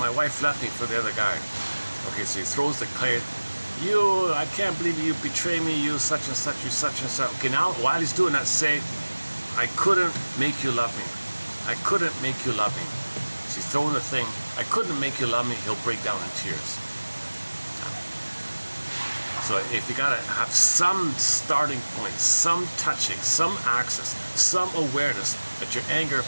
wife left me for the other guy. Okay, so he throws the clay. You, I can't believe you betray me, you such and such, you such and such. Okay, now while he's doing that, say, I couldn't make you love me. I couldn't make you love me. So he's throwing the thing, I couldn't make you love me, he'll break down in tears. So if you gotta have some starting point, some touching, some access, some awareness that your anger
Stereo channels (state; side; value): inverted; both; correlation -1.00